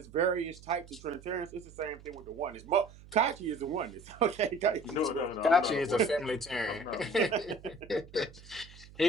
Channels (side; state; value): right; noise; hum, 20 dB below the sound